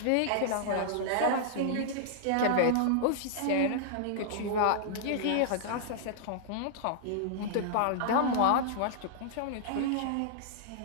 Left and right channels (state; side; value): different; both; correlation -0.01